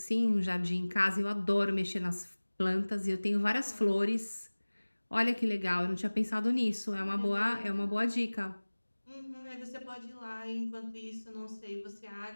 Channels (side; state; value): both; inverted; correlation -1.00